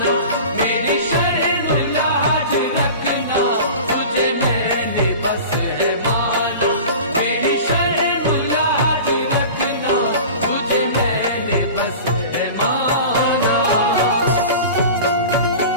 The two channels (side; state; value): both; inverted; correlation -0.36